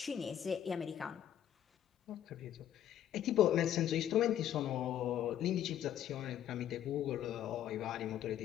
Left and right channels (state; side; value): quieter; right; 10.9 dB